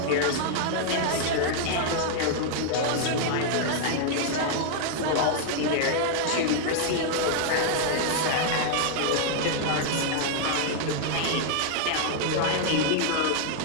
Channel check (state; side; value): different; both; correlation 0.00